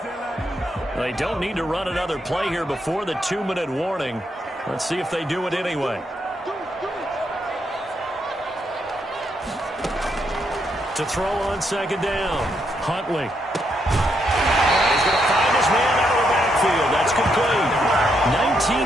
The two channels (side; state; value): both; normal; correlation 0.78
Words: They don't need to run another play here before the 2-minute warning. Let's see if they do it anyway. To throw on second down. Huntley. He's going to find his man out of the backfield. That's complete.